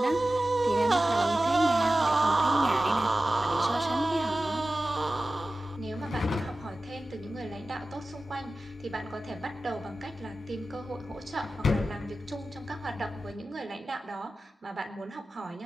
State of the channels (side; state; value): both; normal; correlation 0.95